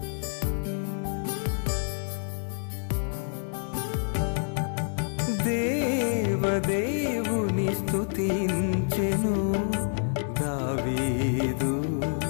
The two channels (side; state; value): right; silent; 59 dB below the other